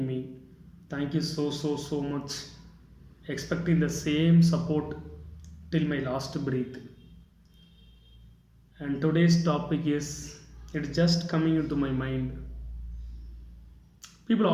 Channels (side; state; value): both; identical; correlation 1.00